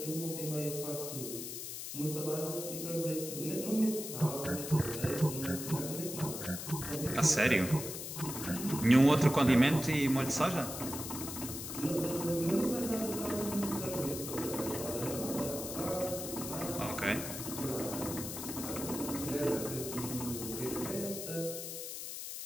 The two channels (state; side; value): noise; left; hiss, 7 dB below the sound